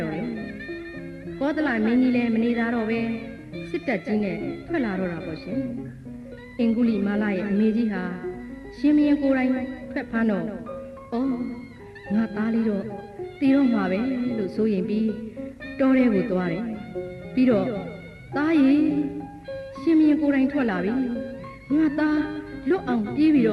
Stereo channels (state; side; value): identical; both; correlation 1.00